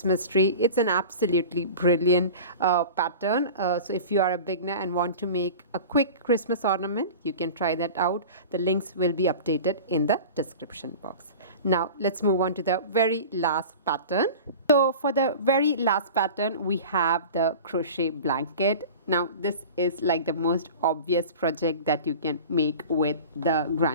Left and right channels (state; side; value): inverted; both; correlation -0.36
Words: tree. It's an absolutely brilliant pattern. So if you are a beginner and want to make a quick Christmas ornament, you can try that out. The links will be updated in the description box. Now let's move on to the very last pattern. So for the very last pattern, we have the crochet blanket. Now this is like the most obvious project that you can make with the